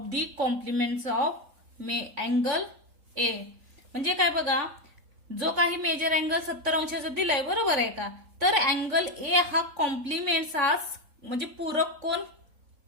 the complements of angle A. म्हणजे काय बघा, जो काही मेजर अँगल 70 अंशाचा दिलाय, बरोबर आहे का, तर अँगल ए हा कॉम्प्लिमेंट्स हा म्हणजे पूरक कोण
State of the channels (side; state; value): left; late; 3.7 ms